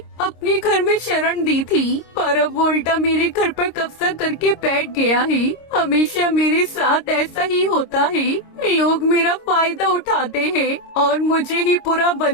अपने घर में शरण दी थी, पर अब वो उल्टा मेरे घर पर कब्जा करके बैठ गया है। हमेशा मेरे साथ ऐसा ही होता है, लोग मेरा फायदा उठाते हैं और मुझे ही बुरा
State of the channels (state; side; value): late; right; 26 ms